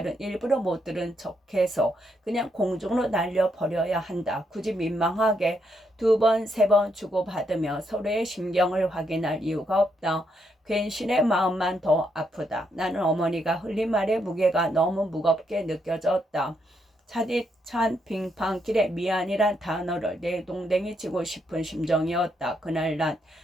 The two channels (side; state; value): both; normal; correlation 0.78